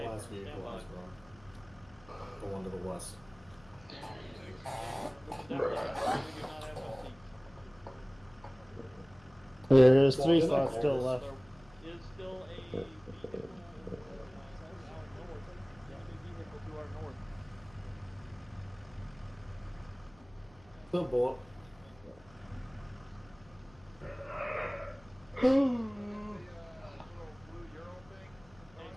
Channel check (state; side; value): noise; left; hum, 25 dB below the sound